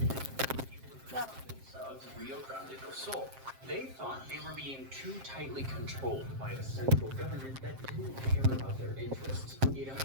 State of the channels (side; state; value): left; late; 7.5 ms